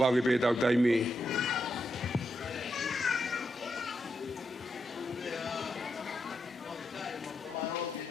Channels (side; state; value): both; normal; correlation 0.84